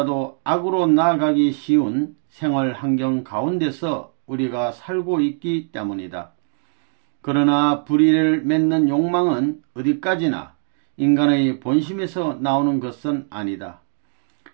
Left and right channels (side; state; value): left; silent; digital silence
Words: 악으로 나아가기 쉬운 생활 환경 가운데서 우리가 살고 있기 때문이다. 그러나 불의를 맺는 욕망은 어디까지나 인간의 본심에서 나오는 것은 아니다.